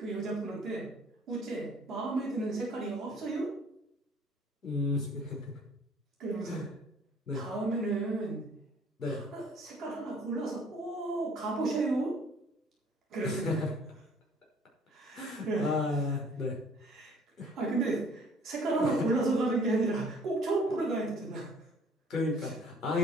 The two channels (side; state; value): both; normal; correlation 0.56